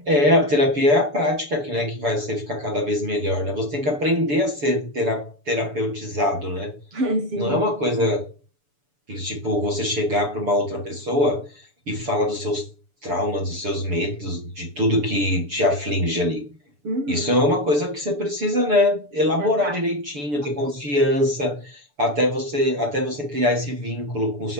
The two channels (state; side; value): late; left; 7.0 ms